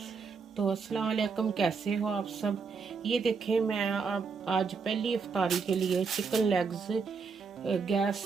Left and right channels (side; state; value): left; quieter; 5.2 dB